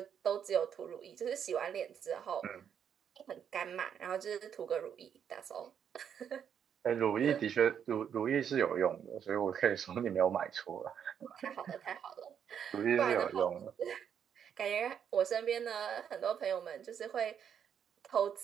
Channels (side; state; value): left; quieter; 8.2 dB